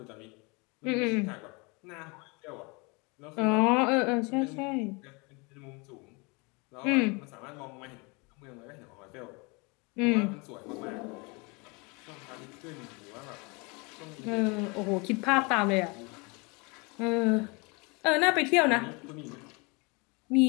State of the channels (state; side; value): quieter; right; 29.0 dB